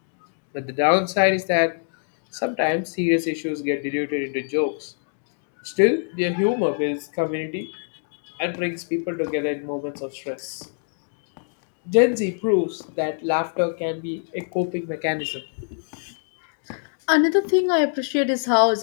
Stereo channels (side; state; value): right; silent; digital silence